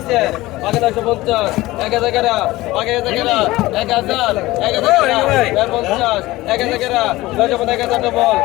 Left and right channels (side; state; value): right; quieter; 18.5 dB